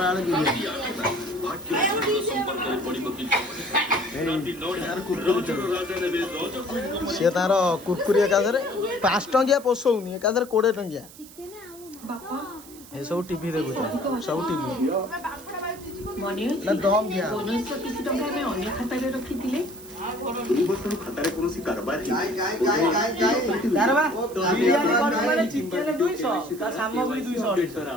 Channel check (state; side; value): noise; right; hiss, 19 dB below the sound